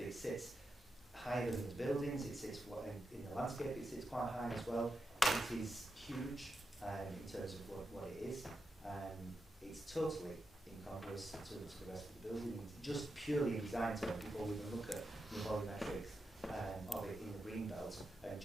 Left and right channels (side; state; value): both; normal; correlation 0.88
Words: it sits higher than the buildings. It sits in the landscape. It sits quite high as well. It is huge in terms of what it is. It's totally incongruous to the rest of the building. It's just purely in design terms before we even look at the volumetrics of it in the green belt and